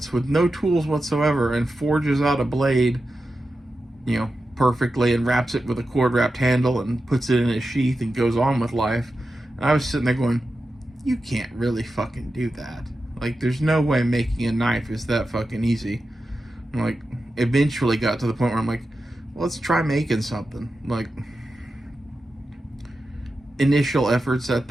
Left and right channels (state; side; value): normal; both; correlation 0.91